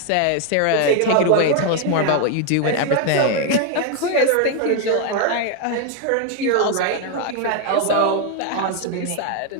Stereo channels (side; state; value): both; different; correlation 0.01